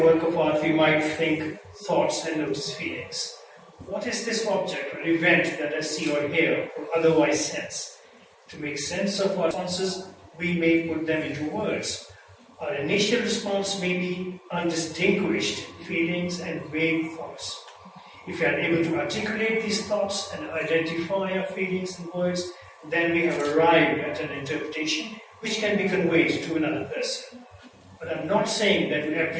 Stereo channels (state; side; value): identical; both; correlation 1.00